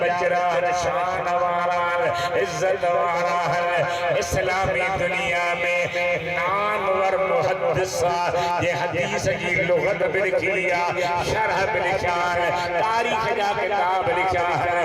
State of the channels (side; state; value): both; identical; correlation 1.00